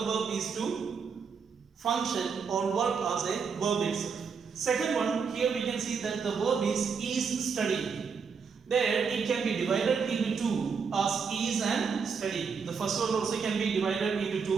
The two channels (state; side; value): quieter; left; 5.8 dB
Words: verb is to function or work as a verb itself. Second one, here we can see that the verb is studying. There it can be divided into two as is and study. The first one also can be divided into